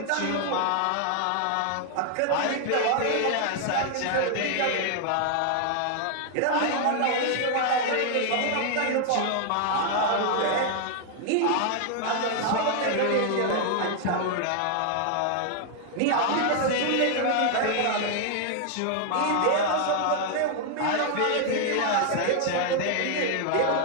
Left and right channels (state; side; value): different; both; correlation 0.00